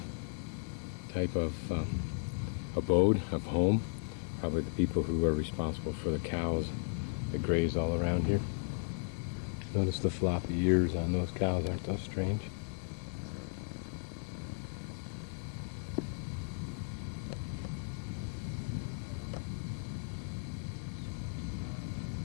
type of abode, of home. Probably the people who are responsible for the cows that graze all around here. Notice the floppy ears on those cows, aren't those strange?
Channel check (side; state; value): right; silent; 54 dB below the other